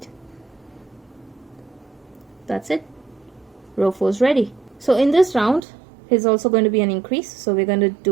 That's it. Row 4 is ready. So in this round is also going to be an increase. So we're going to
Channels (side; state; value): left; drops out; at 5.6 s